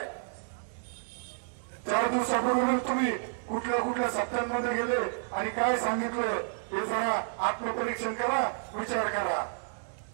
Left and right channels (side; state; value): left; silent; digital silence